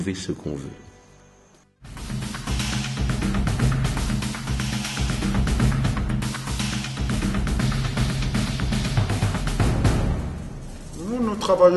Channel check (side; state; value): both; identical; correlation 1.00